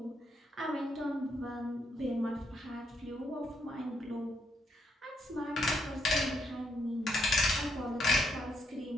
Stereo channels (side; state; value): both; normal; correlation 0.76